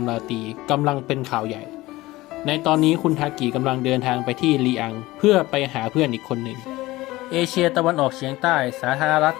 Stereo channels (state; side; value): quieter; right; 18.8 dB